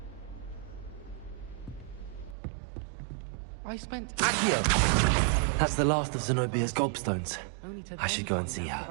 I spent Accio. That's the last of Zenobia's gobstones. only today I should go and see her.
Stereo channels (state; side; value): drops out; left; at 2.4 s